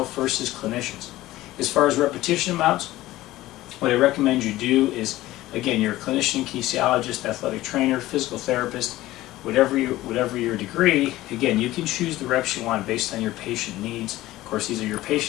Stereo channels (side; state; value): right; quieter; 16.6 dB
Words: first as clinicians. As far as repetition amounts, what I recommend you do is, again, you're a clinician, kinesiologist, athletic trainer, physical therapist, whatever your degree, again, you can choose the reps you want based on your patient needs. Of course, these are your